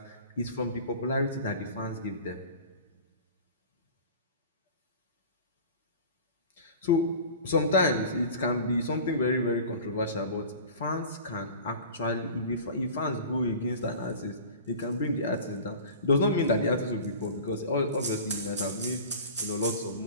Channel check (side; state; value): both; inverted; correlation -0.39